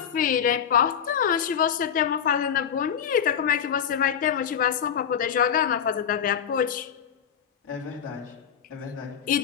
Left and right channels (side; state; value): right; quieter; 8.3 dB